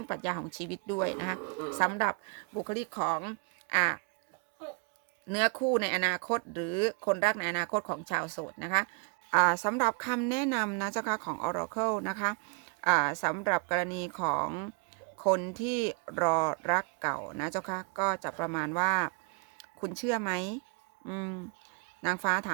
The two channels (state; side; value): quieter; left; 35.9 dB